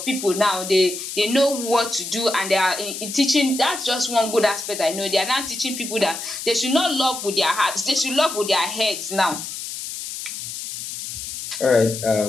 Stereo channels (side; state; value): left; noise; hiss, 8 dB below the sound